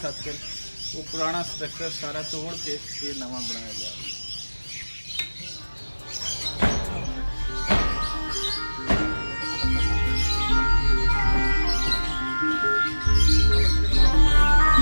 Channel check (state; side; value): inverted; both; correlation -1.00